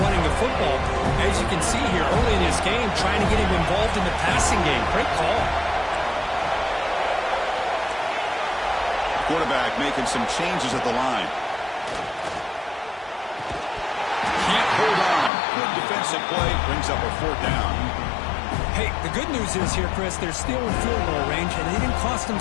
the football. As you can see here early in this game, trying to get him involved in the passing game. Great call. Quarterback making some changes at the line. Can't hold on. Good defensive play. Brings up a 4th down. Hey, the good news is here, Chris, they're still in field goal range, and they didn't cost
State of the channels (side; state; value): right; drops out; at 15.3 s